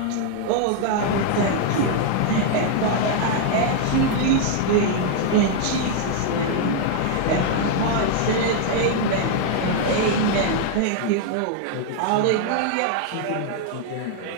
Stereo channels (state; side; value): different; both; correlation 0.00